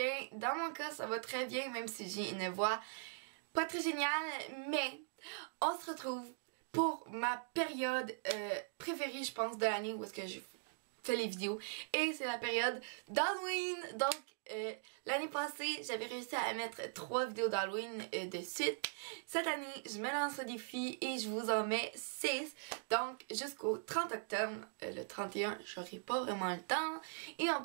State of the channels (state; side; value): silent; left; digital silence